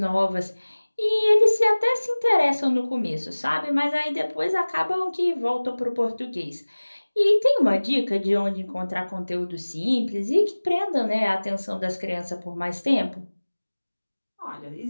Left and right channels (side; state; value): both; inverted; correlation -1.00